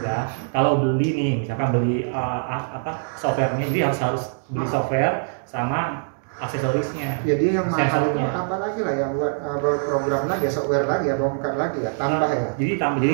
ya. Kalau beli nih, misalkan beli softwarenya, jadi harus beli software sama aksesorisnya. Jadi yang mahal itu Sensornya. apa lagi lah yang buat program lagi ya, software lagi ya, bongkar lagi ya, tambah ya. Jadi jadi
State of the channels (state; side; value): silent; left; digital silence